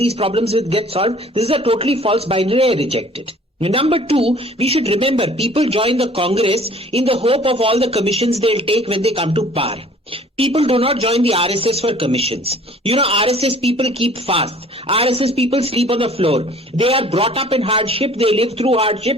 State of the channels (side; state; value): both; normal; correlation 0.52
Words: problems will get solved? This is a totally false binary. I reject it. Number two, we should remember people join the Congress in the hope of all the commissions they'll take when they come to power. People do not join the RSS for commissions. You know, RSS people keep fast. RSS people sleep on the floor. They are brought up in hardship. They live through